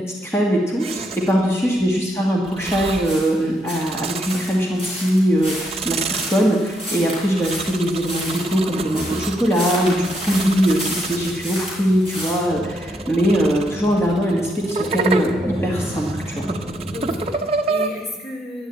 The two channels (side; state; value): both; normal; correlation 0.77